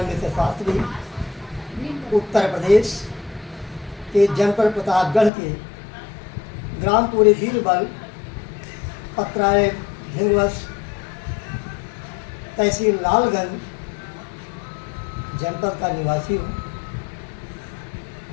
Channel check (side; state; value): right; drops out; at 5.3 s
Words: मिश्र शास्त्री उत्तर प्रदेश के जनपद प्रतापगढ़ के ग्राम पूरे बीरबल पत्रालय धिंगवस तहसील लालगंज जनपद का निवासी हूँ